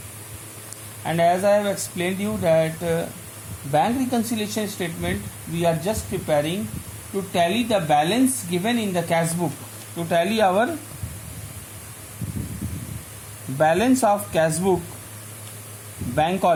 and as I have explained you that bank reconciliation statement we are just preparing to tally the balance given in the cash book, to tally our balance of cash book bank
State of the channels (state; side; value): identical; both; correlation 1.00